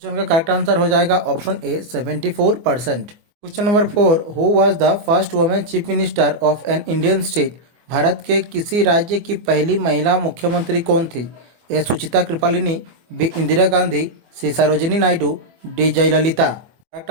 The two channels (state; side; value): late; left; 24 ms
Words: का करेक्ट आंसर हो जाएगा option A 74%। Question number 4, who was the first women chief minister of an Indian state? Bharat के किसी राज्य की पहली महिला मुख्यमंत्री कौन थी? A Sucheta Kripalani, B Indira Gandhi, C Sarojini Naidu, D Jayalalithaa. Correct